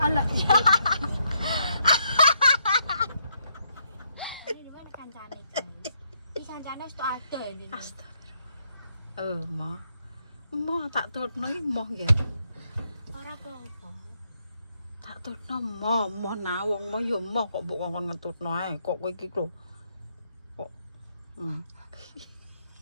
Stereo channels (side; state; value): both; inverted; correlation -0.75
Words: alah. Ini mana kancane guys? Ini kancane wis tok ada ini. Astagfirullah. Mah tak tutno iki moh ya. Ora apa-apa. Tak tutno moh nah wong moh ya moh kok mbok ngomong ngetutno ae kok kowe iki lho. Kok